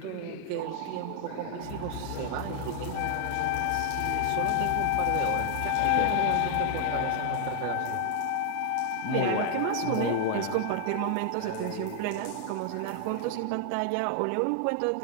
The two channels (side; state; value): both; different; correlation 0.00